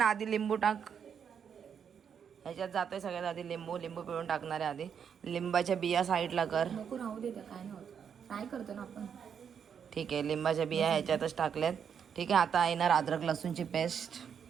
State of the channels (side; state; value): left; quieter; 7.5 dB